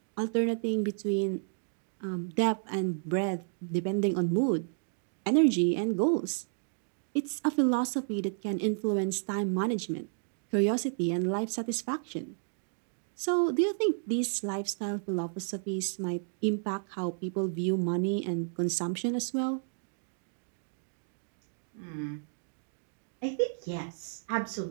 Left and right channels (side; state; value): left; silent; digital silence